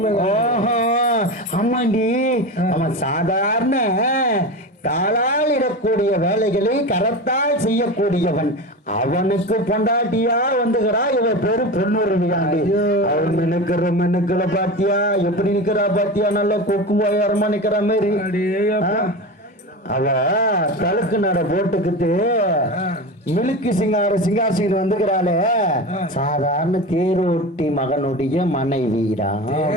ஓஹோ, ஆமாண்டி. அவன் சாதாரண காலால் இடக்கூடிய வேலைகளை கரத்தால் செய்யக்கூடியவன். அவனுக்கு பொண்டாட்டியா வந்துகிறா இவ பேரு பொண்ணுருவியாண்டி. அவன் மெனுக்களை பாத்தியா எப்படி நிக்கிறா பாத்தியா? நல்ல கொக்கு போயாரமா நிக்கிற மாதிரி. அவ தலுக்கு நட போட்டுக்கிட்டு மிலுக்கு சிங்காரசிங்க வந்துக்கிறாளே. சாதாரண தேரோட்டி மகனுடைய மனைவிடா.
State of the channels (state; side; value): normal; both; correlation 0.26